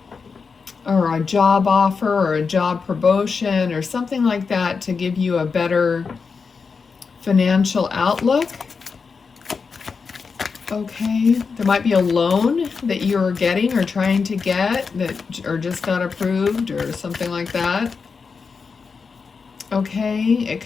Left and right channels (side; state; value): right; quieter; 5.2 dB